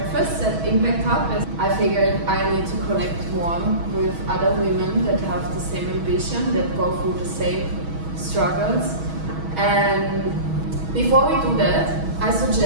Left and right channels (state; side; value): late; left; 6.2 ms